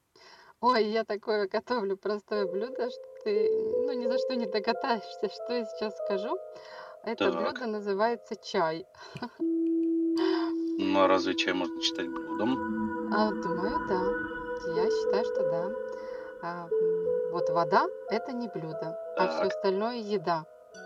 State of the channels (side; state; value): both; identical; correlation 1.00